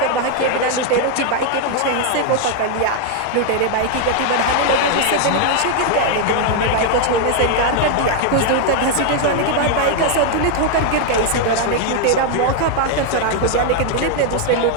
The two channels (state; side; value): different; both; correlation 0.00